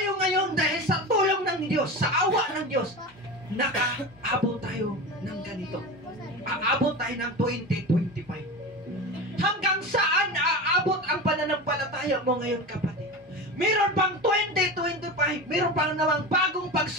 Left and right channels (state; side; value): normal; both; correlation 0.27